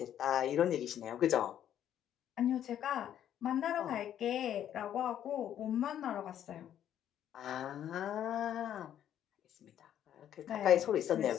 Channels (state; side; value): quieter; right; 10.5 dB